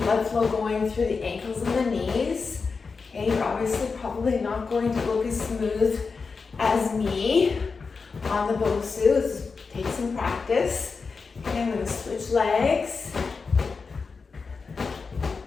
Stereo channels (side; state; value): right; quieter; 4.8 dB